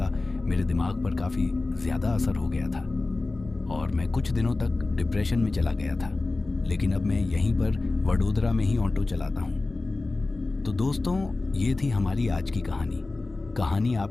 मेरे दिमाग पर काफ़ी ज़्यादा असर हो गया था और मैं कुछ दिनों तक डिप्रेशन में चला गया था। लेकिन अब मैं यहीं पर वडोदरा में ही ऑटो चलाता हूँ। तो दोस्तों, ये थी हमारी आज की कहानी। कहानी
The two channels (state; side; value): quieter; right; 3.3 dB